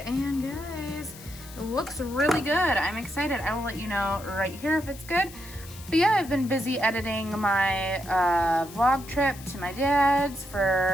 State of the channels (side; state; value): left; noise; hiss, 17 dB below the sound